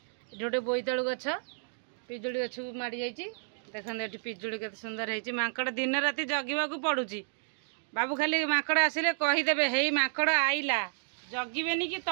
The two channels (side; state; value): left; silent; digital silence